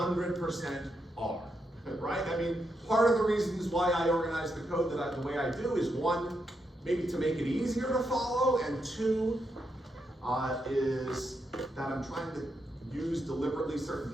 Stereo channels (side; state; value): both; normal; correlation 0.82